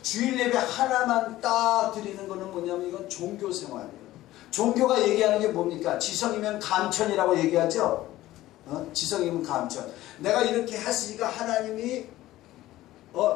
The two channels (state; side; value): quieter; right; 15.7 dB